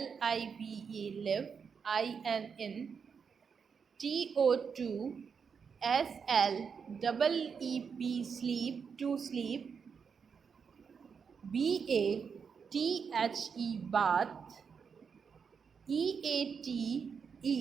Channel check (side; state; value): left; quieter; 6.2 dB